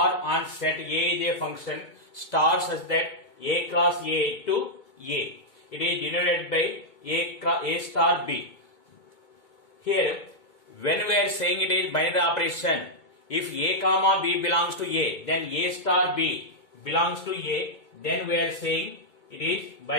on set A is a function star such that A cross A to A. It is denoted by A star B. Here, when we are saying it is binary operation, if A comma B belongs to A, then A star B belongs to A, then we are saying it is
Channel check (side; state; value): right; late; 2.2 ms